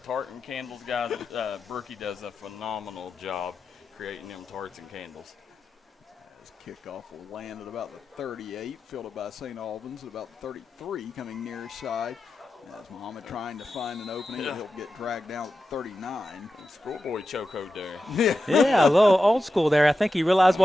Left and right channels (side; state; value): both; normal; correlation 0.91